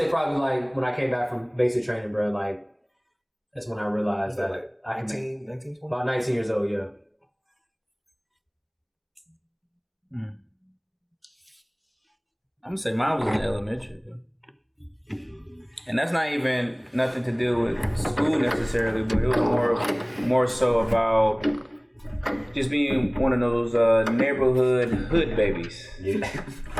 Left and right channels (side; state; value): both; identical; correlation 1.00